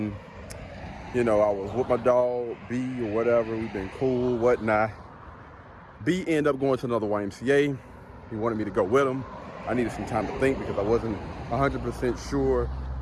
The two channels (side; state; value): both; identical; correlation 1.00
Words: I was with my dog B or whatever. We've been cool, whatnot. B ended up going to another YMCA. He wanted me to go with him. I needed some time to think because I wasn't 100% sure.